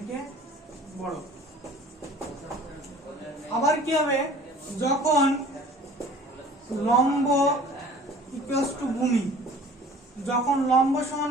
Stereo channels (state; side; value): normal; both; correlation 0.48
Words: বড়। আবার কি হবে, যখন লম্ব ইকুয়ালস টু ভূমি, যখন লম্ব